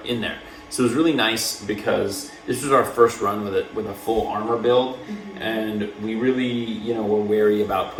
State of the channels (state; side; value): identical; both; correlation 1.00